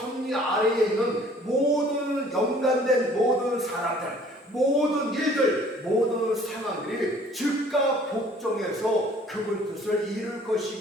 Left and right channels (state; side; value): normal; both; correlation 0.54